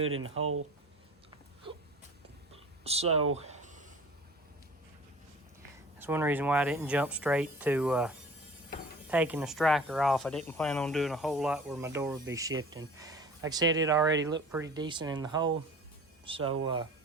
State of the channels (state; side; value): normal; both; correlation 0.43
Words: in the hole, so that's one reason why I didn't jump straight to taking the striker off. I didn't plan on doing a whole lot where my door would be shifting. Like I said, it already looked pretty decent in the hole, so